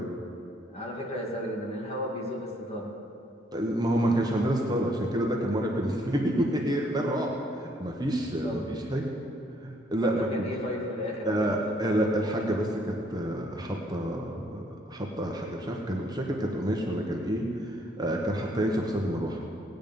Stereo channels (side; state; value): both; normal; correlation 0.67